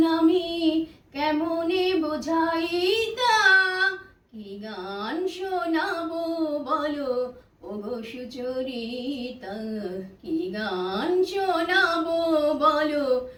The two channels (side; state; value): both; identical; correlation 1.00